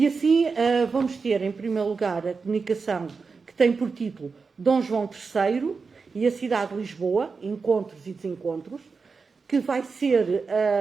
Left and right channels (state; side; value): quieter; left; 4.8 dB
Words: assim vamos ter, em primeiro lugar, a comunicação que tem por título Dom João III e a cidade de Lisboa, encontros e desencontros, que vai ser